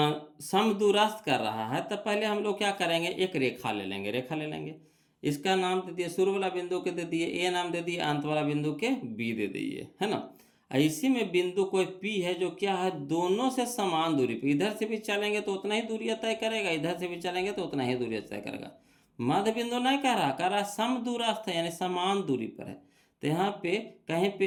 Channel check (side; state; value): both; identical; correlation 1.00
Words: समदूरस्थ कर रहा है तो पहले हम लोग क्या करेंगे, एक रेखा ले लेंगे, इसका नाम दे दिए, शुरू वाला बिंदु के दे दिए ए नाम दे दिए, अंत वाला बिंदु के बी दे दिए, है ना। इसी में बिंदु कोई पी है जो क्या है, दोनों से समान दूरी पे, इधर से भी चलेंगे तो उतना ही दूरी तय करेगा, इधर से भी चलेंगे तो उतना ही दूरी तय करेगा। मध्य बिंदु नहीं कह रहा समदूरस्थ है, यानी समान दूरी पर है। तो यहाँ पे कहीं